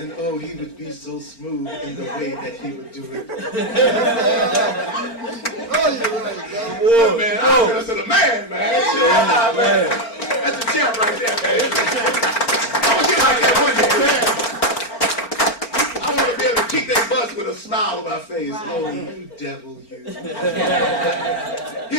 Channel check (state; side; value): late; right; 4.4 ms